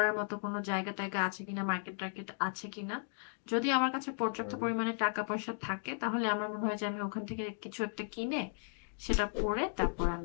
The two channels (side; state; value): right; silent; digital silence